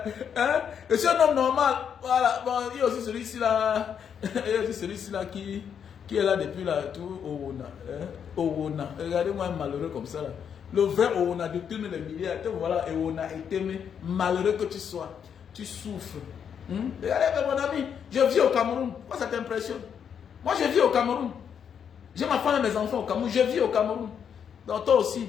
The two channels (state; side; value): quieter; right; 7.8 dB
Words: Hein? Je suis un homme normal. Voilà. Bon, il y a aussi celui-ci là. Il y a aussi celui-ci là qui est là depuis là. Tout Owona. Hein? Owona. Regardez-moi un malheureux comme ça là. Le vrai Owona de tous les milliards. Voilà, Owona est aimé. Malheureux que tu sois. Tu souffres. Regardez, mon ami. Je vis au Cameroun. Moi, ça t'impressionne. Moi, je vis au Cameroun. J'ai ma femme et mes enfants au Cameroun. Je vis au Cameroun. Donc toi aussi,